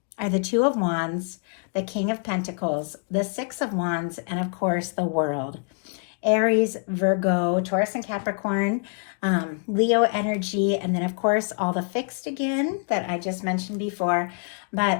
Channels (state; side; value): quieter; right; 39.7 dB